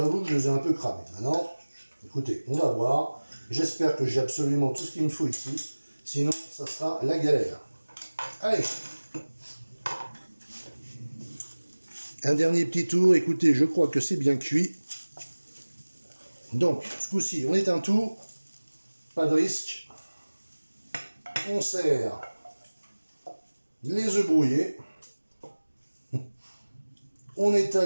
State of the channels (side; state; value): both; inverted; correlation -1.00